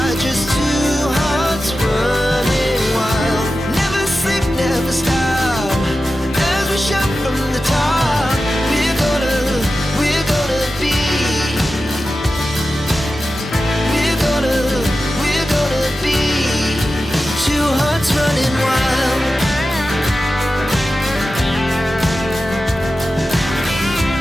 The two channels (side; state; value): both; normal; correlation 0.93